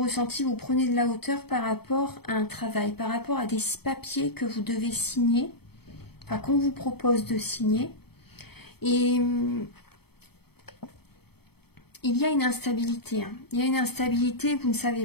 vous prenez de la hauteur par rapport à un travail, par rapport à des papiers que vous devez signer, enfin qu'on vous propose de signer. Et il y a une instabilité. Il y a une instabilité, vous ne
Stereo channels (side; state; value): right; late; 0.97 ms